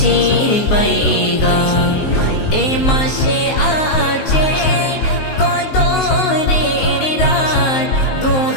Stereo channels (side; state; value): right; late; 19 ms